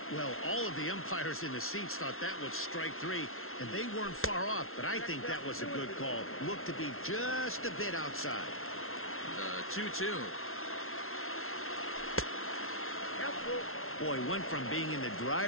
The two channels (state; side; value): late; right; 0.62 ms